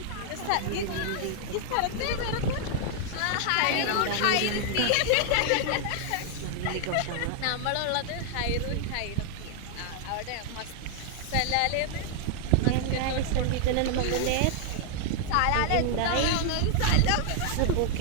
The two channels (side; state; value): both; different; correlation 0.00